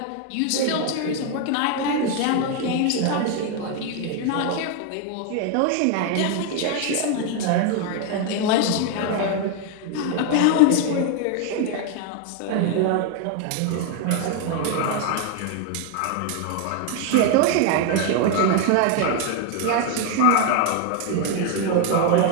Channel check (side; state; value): both; different; correlation 0.01